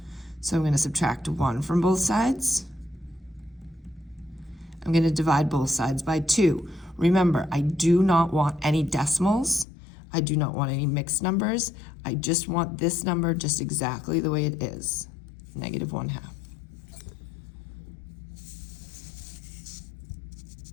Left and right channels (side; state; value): right; drops out; at 9.7 s